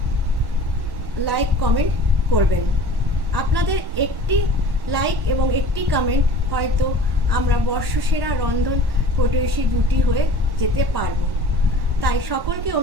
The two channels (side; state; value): left; late; 1.1 ms